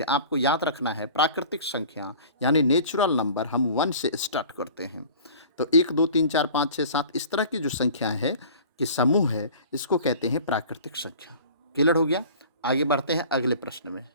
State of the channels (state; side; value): inverted; both; correlation -0.44